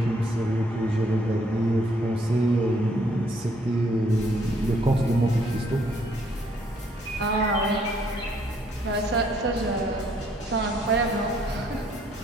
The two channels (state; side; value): normal; both; correlation 0.67